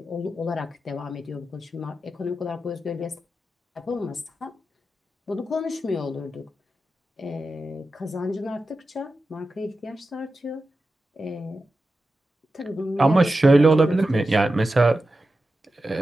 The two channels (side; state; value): both; normal; correlation 0.92